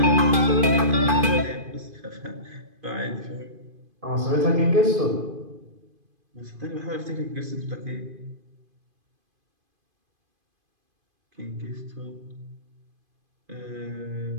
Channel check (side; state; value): left; late; 2.5 ms